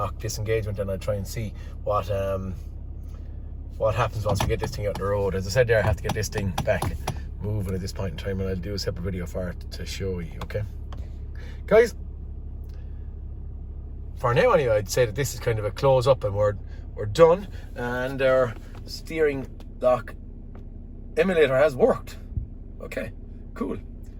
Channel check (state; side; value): identical; both; correlation 1.00